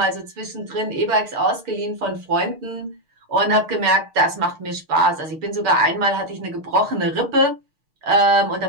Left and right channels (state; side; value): late; left; 6.4 ms